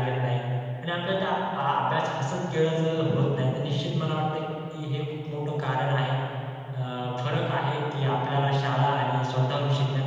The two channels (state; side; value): identical; both; correlation 1.00